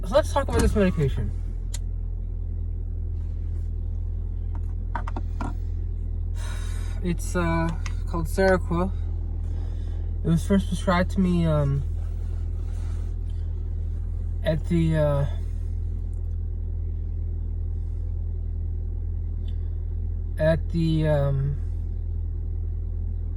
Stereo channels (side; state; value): both; identical; correlation 1.00